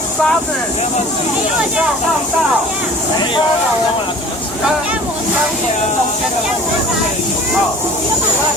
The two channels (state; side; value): normal; both; correlation 0.45